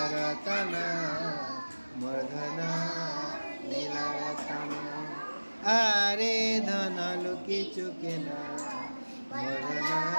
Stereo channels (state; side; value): inverted; both; correlation -1.00